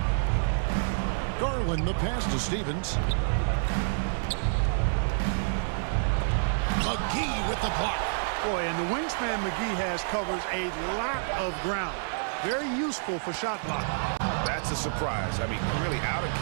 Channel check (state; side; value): silent; left; digital silence